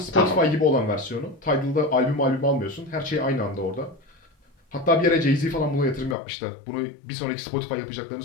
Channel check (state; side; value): drops out; right; at 6.2 s